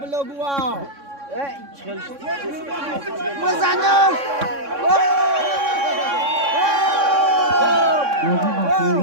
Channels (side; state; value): left; late; 3.6 ms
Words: بلگوا. بزنم. Bozu